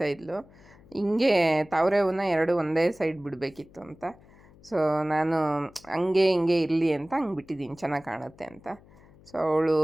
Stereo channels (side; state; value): left; noise; hum, 25 dB below the sound